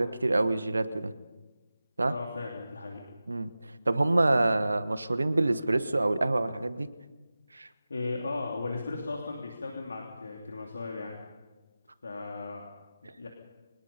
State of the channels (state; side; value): inverted; both; correlation -0.95